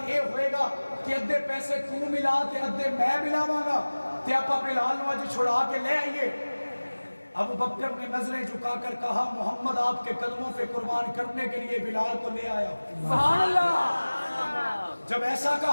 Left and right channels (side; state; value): both; inverted; correlation -1.00